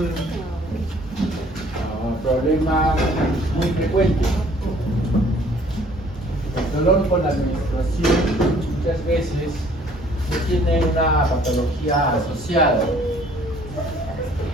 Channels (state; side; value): normal; both; correlation 0.57